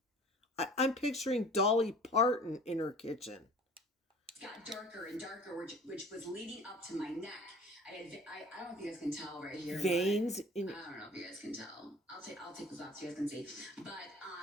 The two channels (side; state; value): both; normal; correlation 0.46